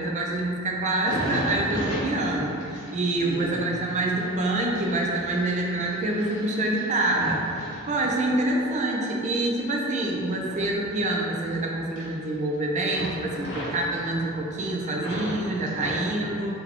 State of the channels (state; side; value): normal; both; correlation 0.35